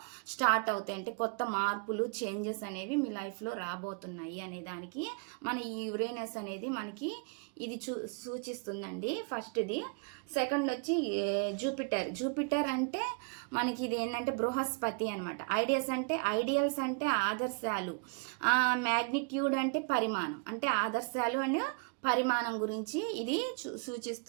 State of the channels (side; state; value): left; quieter; 35.3 dB